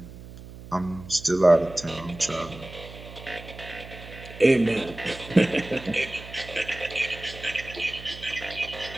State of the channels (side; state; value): right; noise; hum, 15 dB below the sound